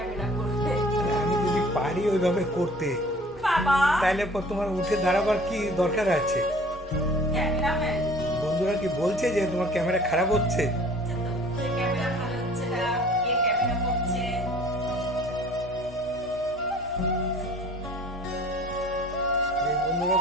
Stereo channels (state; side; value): normal; both; correlation 0.49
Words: করবে। আমি যদি পারি ওইভাবে করতে, বাবা তাহলে তোমার উঠে দাঁড়াবার কি দরকার আছে? ক্যামেরাম্যান বন্ধুরা কি বলছে যে তোমার ক্যামেরা খারাপ হচ্ছে? ক্যামেরা ভালো হচ্ছে না, কে ক্যামেরা করছে? যে বন্ধুরা